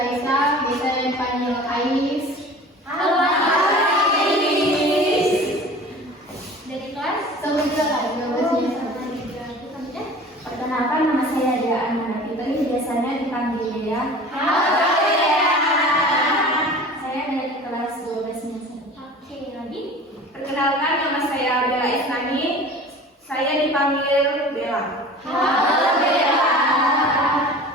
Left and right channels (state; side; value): normal; both; correlation 0.41